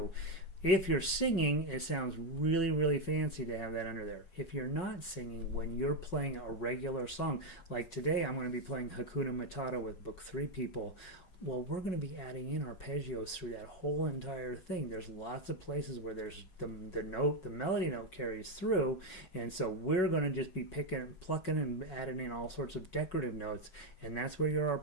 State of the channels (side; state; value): right; late; 5.4 ms